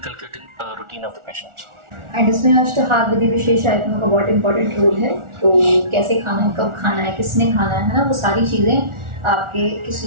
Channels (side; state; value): left; late; 1.4 ms